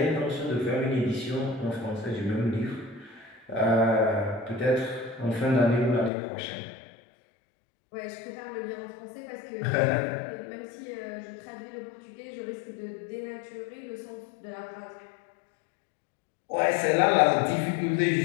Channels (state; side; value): drops out; right; at 6.1 s